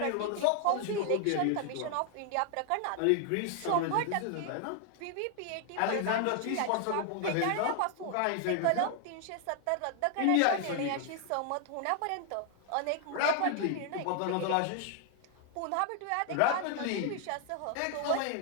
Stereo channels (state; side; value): different; both; correlation 0.00